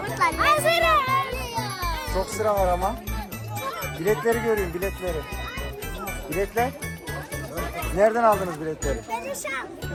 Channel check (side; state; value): both; identical; correlation 1.00